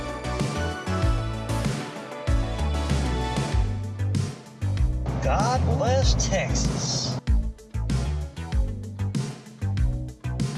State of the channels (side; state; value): both; identical; correlation 1.00